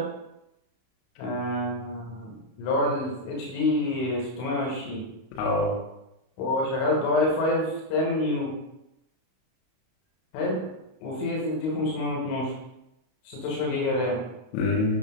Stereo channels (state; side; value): late; right; 32 ms